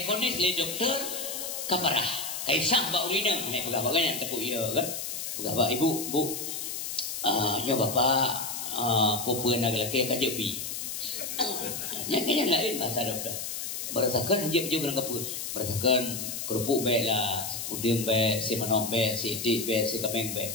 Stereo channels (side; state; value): left; noise; hiss, 5 dB below the sound